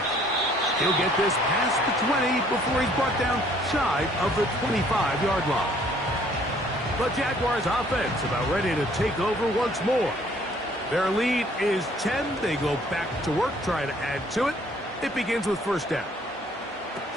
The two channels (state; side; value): normal; both; correlation 0.60